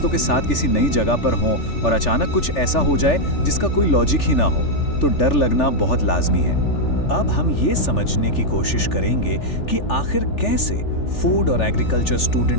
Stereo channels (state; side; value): late; right; 3.4 ms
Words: के साथ किसी नई जगह पर हों और अचानक कुछ ऐसा हो जाए जिसका कोई लॉजिक ही ना हो, तो डर लगना बहुत लाजमी है। अब हम ये समझने की कोशिश करेंगे कि आखिर कैसे फूड और एग्रीकल्चर